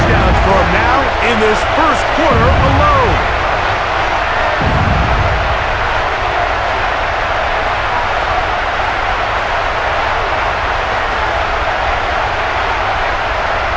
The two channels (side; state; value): both; identical; correlation 1.00